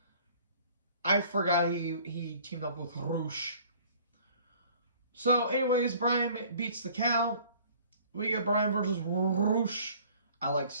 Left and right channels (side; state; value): both; inverted; correlation -0.52